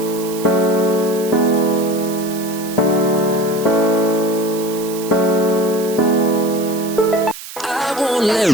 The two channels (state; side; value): noise; right; hiss, 13 dB below the sound